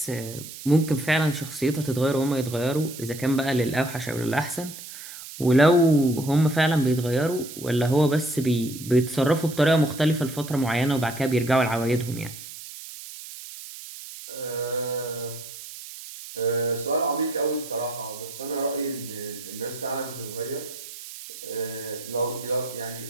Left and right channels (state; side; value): noise; right; hiss, 13 dB below the sound